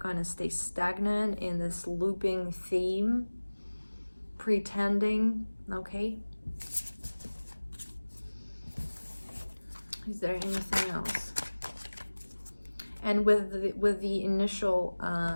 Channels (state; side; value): inverted; both; correlation -1.00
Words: of stay stagnant in this looping theme, pretending, okay? Is there anything else? And with the initial